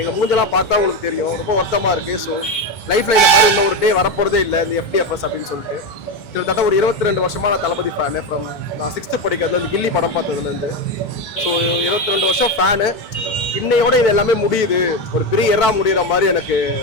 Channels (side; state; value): right; late; 2.2 ms